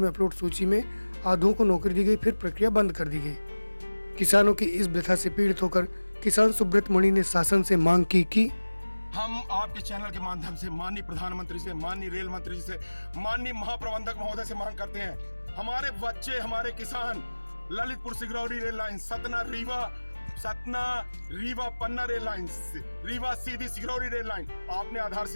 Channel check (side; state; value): both; inverted; correlation -1.00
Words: अपलोड सूची में आधों को नौकरी दी गई, फिर प्रक्रिया बंद कर दी गई। किसानों की इस व्यथा से पीड़ित होकर किसान सुब्रत मणि ने शासन से मांग की कि हम आपके चैनल के माध्यम से माननीय प्रधानमंत्री से, माननीय रेल मंत्री जी से, माननीय महाप्रबंधक महोदय से मांग करते हैं, हमारे बच्चे, हमारे किसान ललितपुर सिंगरौली रेल लाइन, सतना रीवा पन्ना rail line, Rewa Sidhi Singrauli rail line, आपने